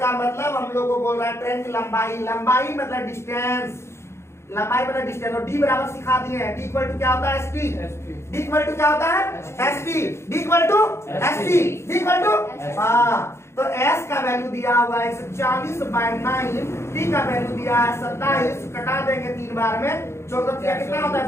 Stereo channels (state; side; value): late; right; 0.13 ms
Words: मतलब हम लोग को बोल रहा है ट्रेन की लंबाई। लंबाई मतलब डिस्टेंस, लंबाई मतलब डिस्टेंस। और डी बराबर सिखा दिए हैं, डी इक्वल टू क्या होता है, एसटी। डी इक्वल टू क्या होता है, ST. D equal to ST, D equal to, हाँ। तो एस का वैल्यू दिया हुआ है 140/9, टी का वैल्यू दिया है 27, कटा देंगे 3 बार में, 14 कितना होता है